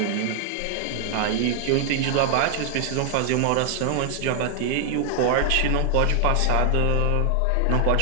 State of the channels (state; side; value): different; both; correlation 0.00